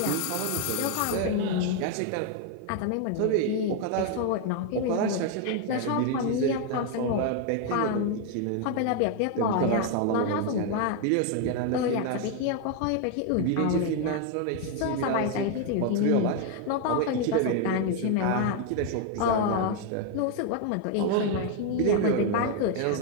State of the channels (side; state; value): both; different; correlation 0.01